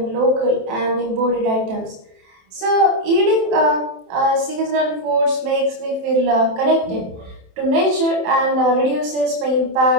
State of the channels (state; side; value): late; left; 27 ms